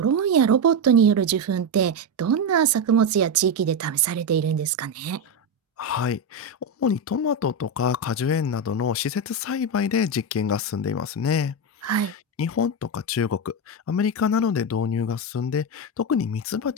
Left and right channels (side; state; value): both; normal; correlation 0.10